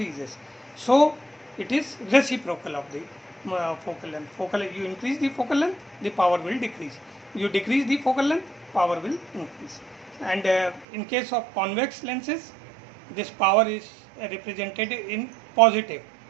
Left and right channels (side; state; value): left; drops out; at 10.9 s